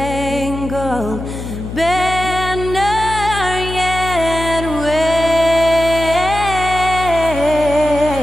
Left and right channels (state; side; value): noise; left; hum, 8 dB below the sound